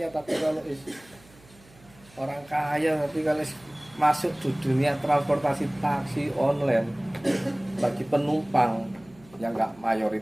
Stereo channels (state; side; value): noise; right; hum, 26 dB below the sound